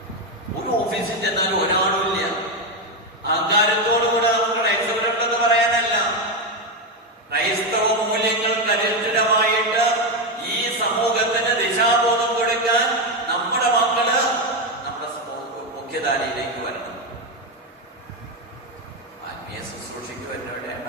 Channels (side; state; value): both; normal; correlation 0.09